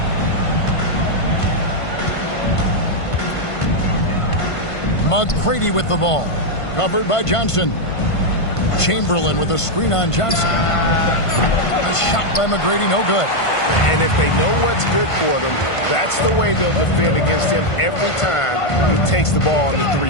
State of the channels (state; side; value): late; right; 1.5 ms